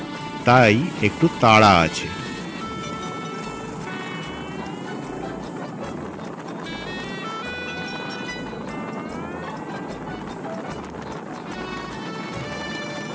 তাই একটু তাড়া আছে।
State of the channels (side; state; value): both; identical; correlation 1.00